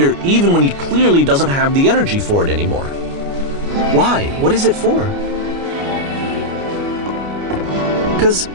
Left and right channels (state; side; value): late; left; 29 ms